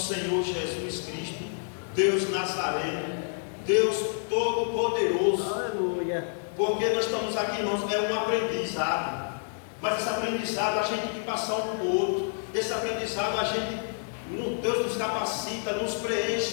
Senhor Jesus Cristo, Deus Nazareno, Deus Todo-Poderoso. Aleluia. Porque nós estamos aqui, irmãos, é um aprendizado, mas esse aprendizado a gente tem que passar um para o outro. Esse aprendizado a gente, Deus nos capacita, nos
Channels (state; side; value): silent; right; 59 dB below the other